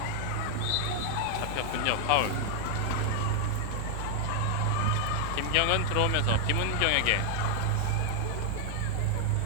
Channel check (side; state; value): both; different; correlation 0.00